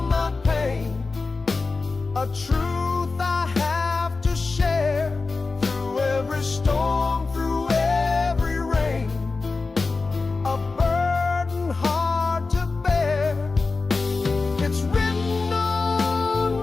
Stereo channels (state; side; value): quieter; right; 3.9 dB